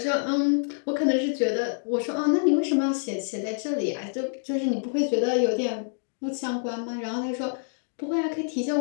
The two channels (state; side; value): silent; right; digital silence